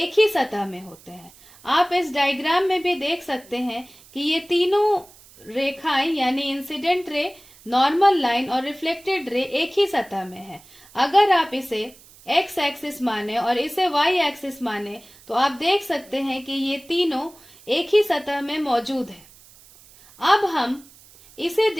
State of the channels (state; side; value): noise; right; hiss, 24 dB below the sound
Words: ही सतह में होते हैं। आप इस डायग्राम में भी देख सकते हैं कि ये तीनों रेखाएं यानी इंसिडेंट रे, नॉर्मल लाइन और रिफ्लेक्टेड रे एक ही सतह में है। अगर आप इसे एक्स एक्सिस माने और इसे वाई एक्सिस माने तो आप देख सकते हैं कि ये तीनों एक ही सतह में मौजूद है। अब हम इसे